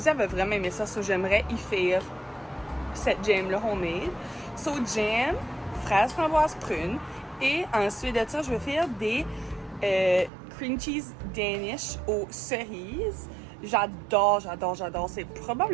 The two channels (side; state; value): left; drops out; at 10.3 s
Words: avait vraiment aimé ça, so j'aimerais y faire cette jam-là homemade. So, jam, fraise, framboise, prune. Et ensuite de ça, je vais faire des cream cheese Danish aux cerises. J'adore. C'est